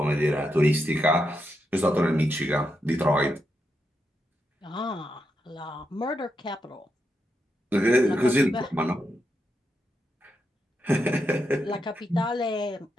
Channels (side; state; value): both; normal; correlation 0.84